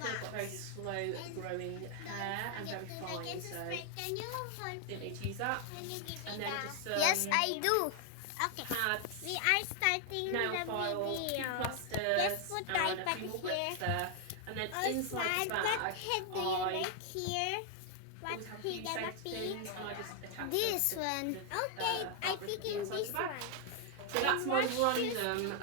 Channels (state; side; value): different; both; correlation 0.00